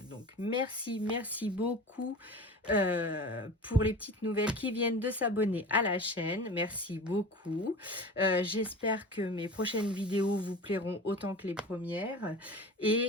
Donc merci beaucoup pour les petites nouvelles qui viennent de s'abonner à la chaîne. Merci beaucoup. J'espère que mes prochaines vidéos vous plairont autant que les premières.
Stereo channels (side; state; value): both; normal; correlation 0.35